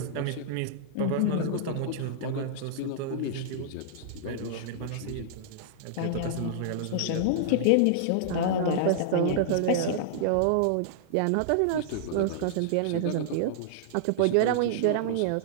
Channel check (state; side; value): different; both; correlation -0.02